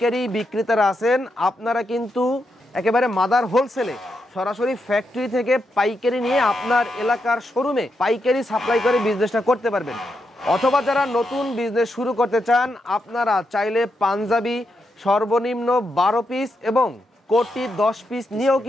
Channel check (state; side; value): normal; both; correlation 0.83